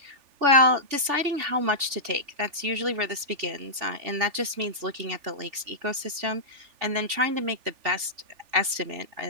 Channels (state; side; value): late; left; 3.4 ms